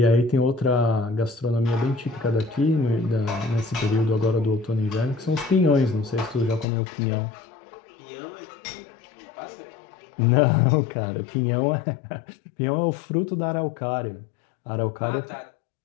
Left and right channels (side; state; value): right; drops out; at 6.7 s